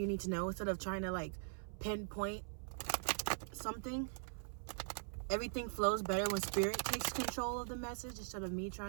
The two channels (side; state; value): left; silent; 50 dB below the other